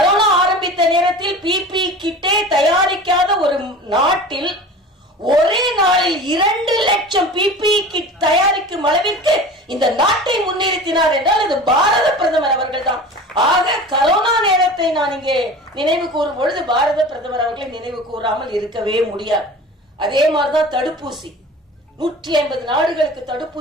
ஆரம்பித்த நேரத்தில் பிபி கிட்டே தயாரிக்காத ஒரு நாட்டில் ஒரே நாளில் 2 லட்சம் பிபி கிட் தயாரிக்கும் அளவிற்கு இந்த நாட்டை முன்னிறுத்தினார் என்றால் அது பாரத பிரதமர் அவர்கள் தான். ஆக கரோனா நேரத்தை நான் இங்கே நினைவு கூறும் பொழுது பாரத பிரதமர் அவர்களை நினைவு கூறாமல் இருக்கவே முடியாது. அதே மாதிரிதான் தடுப்பூசி, 150 நாடுகளுக்கு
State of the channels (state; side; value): normal; both; correlation 0.37